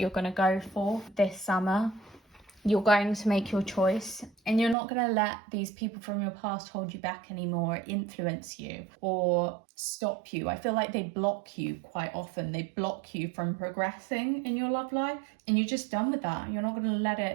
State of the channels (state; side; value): drops out; left; at 4.8 s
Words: going to go for this summer. You're going to make your choice, and you're not going to let these people from your past hold you back anymore, influence you or stop you. I feel like they block you quite often. They block you from progressing in your love life, and you're just done with that. You're not going to let